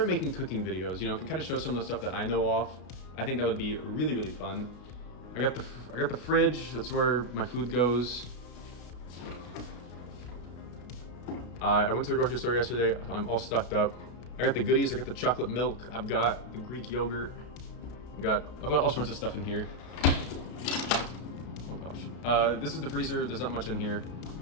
making cooking videos, can kind of show some of the stuff that I know off. I think that would be really, really fun. I got the fridge. That's where my food goes. I went to the grocery store yesterday. I'm all stocked up. I got the goodies. I got the chocolate milk. I've got the Greek yogurt. I've got all sorts of stuff in here. Oh gosh. This is the freezer. There's not much in here.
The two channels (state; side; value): late; right; 32 ms